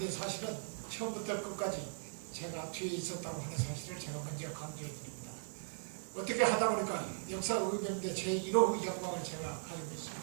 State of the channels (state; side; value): silent; left; digital silence